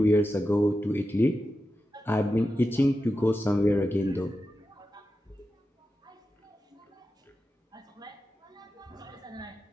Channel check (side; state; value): both; normal; correlation 0.91